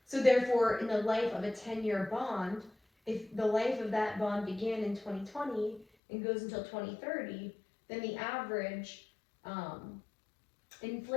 So therefore, in the life of a 10-year bond, if the life of that bond began in 2020 and goes until 2030, then the average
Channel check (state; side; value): drops out; right; at 5.9 s